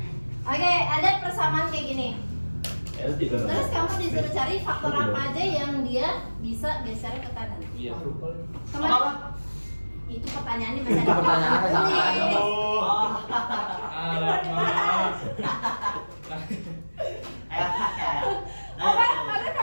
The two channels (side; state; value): both; inverted; correlation -1.00